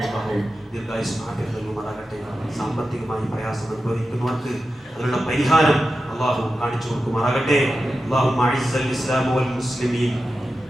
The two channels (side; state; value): both; normal; correlation 0.91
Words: അല്ലാഹു ദീർഘായുസ്സും ആഫിയത്തും നൽകുമാറാകട്ടെ. സാമ്പത്തികമായി പ്രയാസം അനുഭവിക്കുന്നവർക്ക് അതിനുള്ള പരിഹാരം അല്ലാഹു കാണിച്ചു കൊടുക്കുമാറാകട്ടെ. അല്ലാഹുമ്മ അഇസ്സൽ ഇസ്ലാമ വൽ മുസ്ലിമീൻ